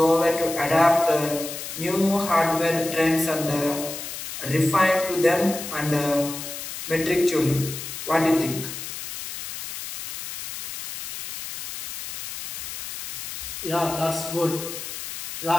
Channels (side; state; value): left; noise; hiss, 8 dB below the sound